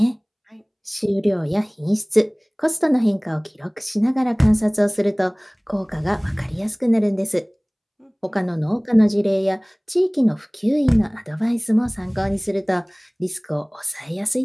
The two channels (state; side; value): identical; both; correlation 1.00